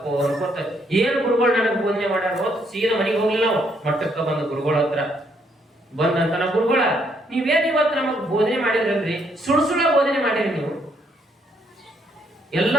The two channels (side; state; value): both; normal; correlation 0.71